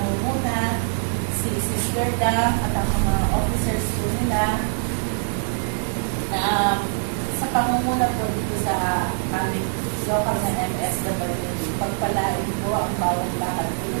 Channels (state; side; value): silent; left; digital silence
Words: si Sister Da at ang mga officers po nila na sa pangunguna po dito sa aming local na MSW. Pagpalain po ang bawat lakad po